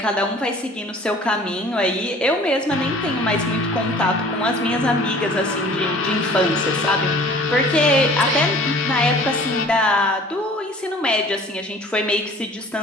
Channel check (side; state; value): both; normal; correlation 0.48